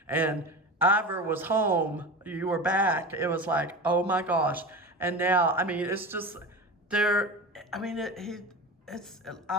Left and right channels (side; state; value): both; normal; correlation 0.29